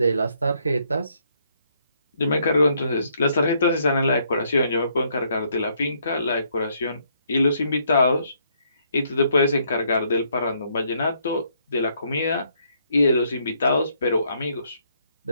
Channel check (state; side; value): inverted; both; correlation -0.71